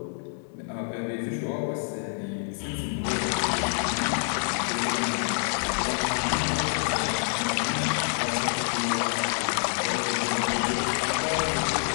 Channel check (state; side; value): silent; right; digital silence